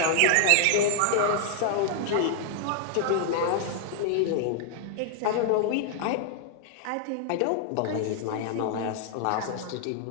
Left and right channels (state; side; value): different; both; correlation 0.00